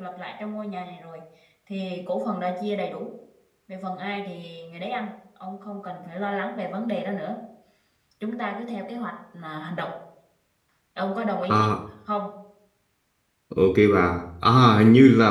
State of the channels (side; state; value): both; identical; correlation 1.00